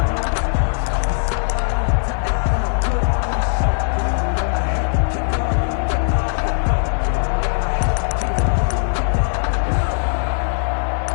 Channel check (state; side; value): silent; right; digital silence